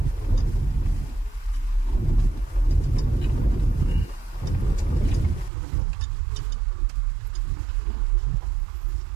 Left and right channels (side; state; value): left; drops out; at 5.5 s